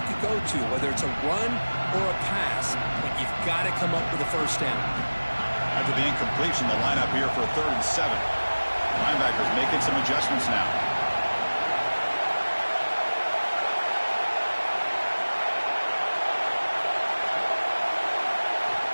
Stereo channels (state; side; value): inverted; both; correlation -1.00